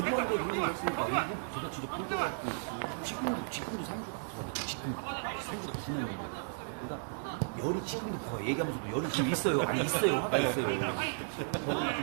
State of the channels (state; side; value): silent; left; digital silence